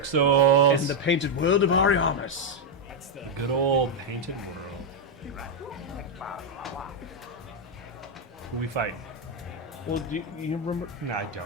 Souls. In the painted world of Ariamis. The good old painted world. Who we fighting? Well, do you remember? No, I don't,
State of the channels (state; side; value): normal; both; correlation 0.02